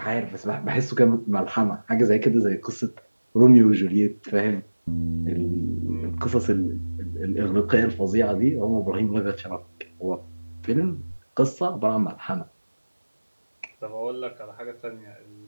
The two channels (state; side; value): inverted; both; correlation -1.00